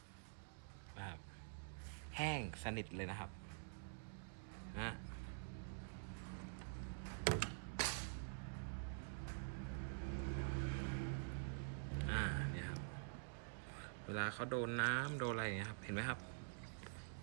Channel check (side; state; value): left; silent; digital silence